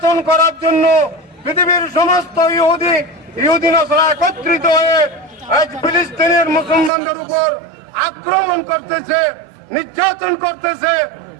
করার জন্য পৃথিবীর সমস্ত ইহুদি নাসারা একত্রিত হয়ে আজ ফিলিস্তিনের মুসলমানদের উপর আক্রমণ করতেছে, নির্যাতন করতেছে,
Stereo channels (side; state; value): left; drops out; at 6.9 s